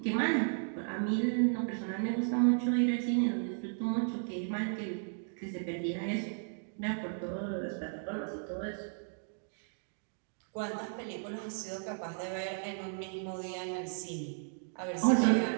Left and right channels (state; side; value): silent; left; digital silence